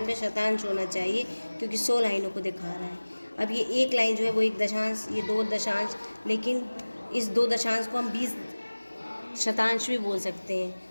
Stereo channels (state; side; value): inverted; both; correlation -1.00